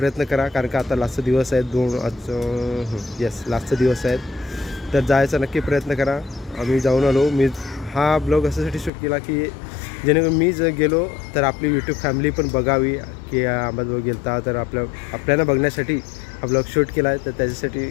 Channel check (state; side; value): drops out; right; at 8.9 s